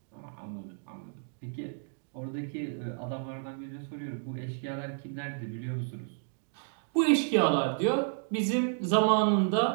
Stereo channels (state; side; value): silent; left; digital silence